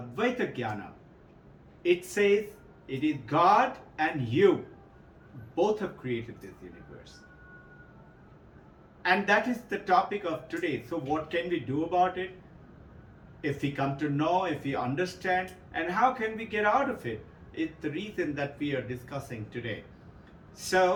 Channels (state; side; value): identical; both; correlation 1.00